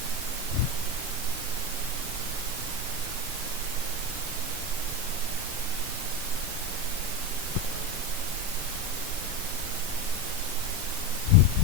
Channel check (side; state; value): left; late; 7.3 ms